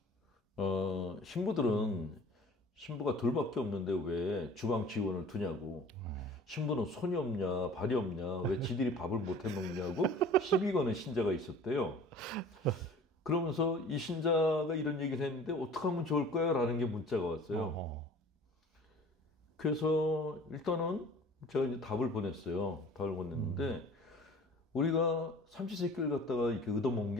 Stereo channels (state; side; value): normal; both; correlation 0.46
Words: 신부가 둘밖에 없는데 왜 주방 직원을 두냐고. 신부는 손이 없냐, 발이 없냐, 왜 지들이 밥을 못 해 먹냐고 시비 거는 신자가 있었대요. 그러면서 이 신자가 이런 얘기를 했는데 어떻게 하면 좋을까요? 라는 게 문자가 왔어요. 그래서 일단은 제가 이제 답을 보냈어요. 답을 보냈는데 우리가 삼시세끼를 갖다가 이렇게 얻어먹는